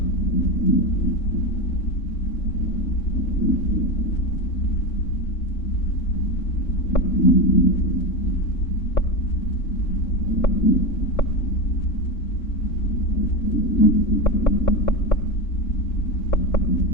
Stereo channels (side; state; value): right; late; 3.6 ms